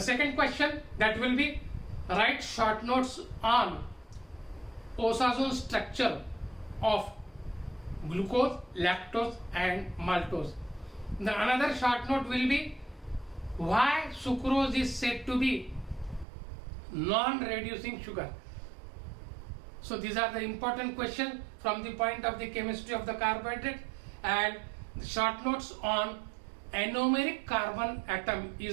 question, that will be write short notes on oxazole structure of glucose, lactose and maltose. The another short note will be why sucrose is said to be non-reducing sugar. So these are the important questions from the point of the chemistry of the carbohydrate. And short notes on anomeric carbon atom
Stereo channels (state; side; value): drops out; left; at 16.2 s